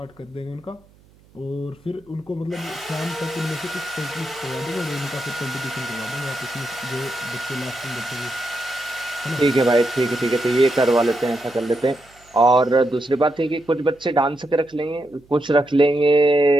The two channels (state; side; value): noise; right; hum, 29 dB below the sound